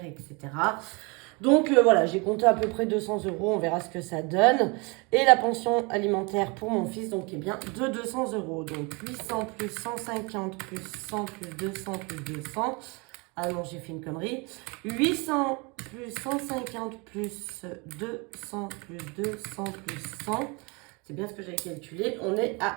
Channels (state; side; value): quieter; left; 29.4 dB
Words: etc. Donc voilà, j'ai compté à peu près 200 euros, on verra ce que ça donne. Et la pension alimentaire pour mon fils, donc est bien de 200 euros. Donc 800 plus 150 plus 100 plus 200 plus 200. Ah non, j'ai fait une connerie. 800 plus 150 plus 200 plus 200 plus 100. C'est bien ce que j'avais calculé. On est